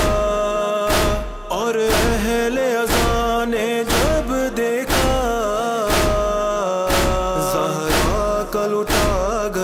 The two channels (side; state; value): both; identical; correlation 1.00